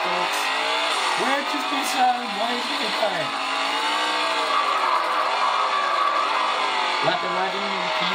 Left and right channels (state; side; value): identical; both; correlation 1.00